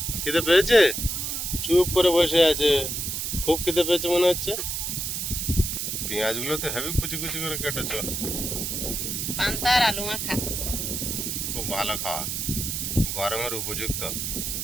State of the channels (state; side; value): noise; right; hiss, 2 dB below the sound